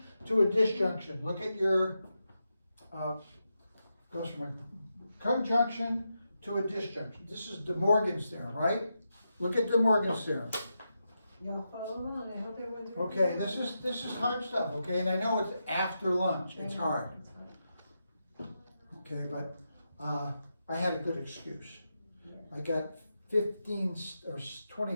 to a disjunction? Look at your, goes from a conjunction to a disjunction. This is De Morgan's theorem, right? Look at De Morgan's theorem. Y'all follow along, I hope everyone's. Okay, this is hard stuff, okay, and I know it's after lunch, it's hard, okay, but, I had a good excuse. I got 15 or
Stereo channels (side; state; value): both; inverted; correlation -0.87